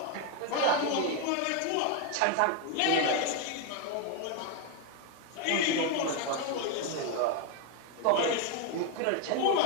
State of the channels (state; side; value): different; both; correlation 0.01